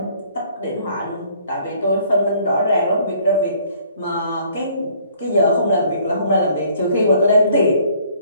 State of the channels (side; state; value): both; inverted; correlation -0.60